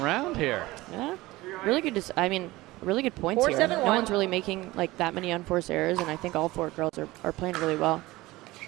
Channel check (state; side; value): quieter; left; 19.3 dB